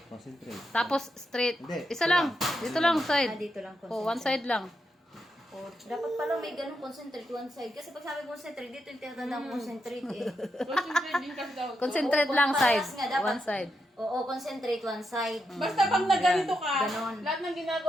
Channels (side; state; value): both; normal; correlation 0.83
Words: Concentrate. Tapos straight. Hindi, Isa lang. Dito lang, Ah, side. dito lang. Oh, one side lang. Oh, dapat pala may ganun concentrate one side. Kasi pag sabi concentrate, dito yung tinatandang concentrate eh. Concentrate din kasi daw. Concentrate lang side. Parehas nga, dapat. One side. Oo, concentrate one side. Basta pag nagganito ka, Ganon. lahat ng